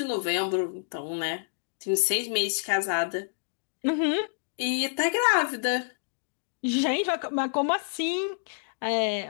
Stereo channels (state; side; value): silent; right; digital silence